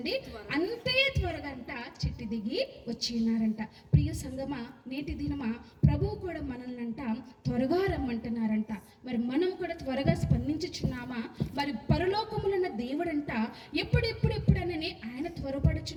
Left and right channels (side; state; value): both; identical; correlation 1.00